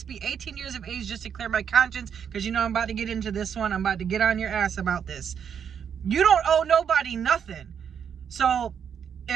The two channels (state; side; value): quieter; left; 7.8 dB